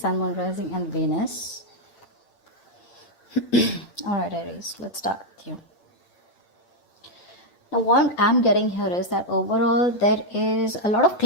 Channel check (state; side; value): late; right; 8.9 ms